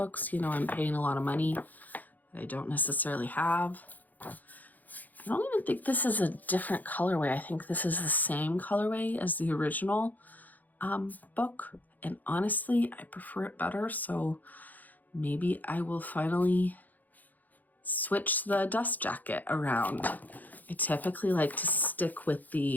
You know, I'm paying a lot of money that I don't necessarily have. I don't even think this is a different colorway. I think this is the same colorway as the original book. And honestly, I prefer it better. So maybe I will finally switch the dust jacket around. I typically like to stick with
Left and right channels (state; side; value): late; right; 0.083 ms